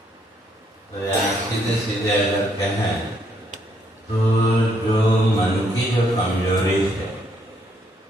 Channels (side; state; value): both; normal; correlation 0.71